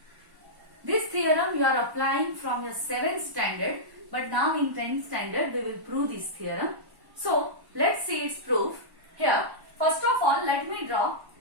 This theorem you are applying from your 7th standard, but now in 10th standard we will prove this theorem. So let's see its proof. Here, first of all, let me draw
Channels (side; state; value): left; late; 1.1 ms